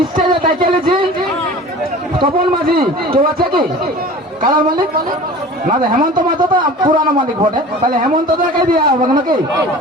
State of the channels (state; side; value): normal; both; correlation 0.40